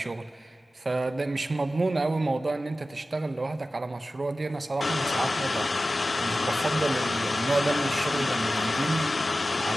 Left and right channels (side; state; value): both; normal; correlation 0.94